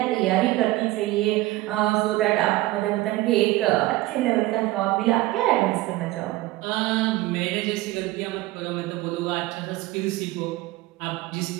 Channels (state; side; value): quieter; left; 18.1 dB